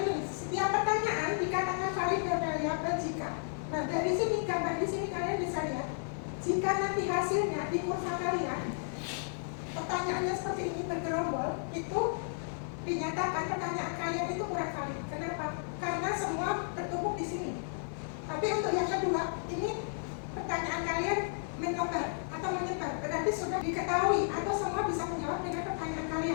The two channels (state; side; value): silent; right; 56 dB below the other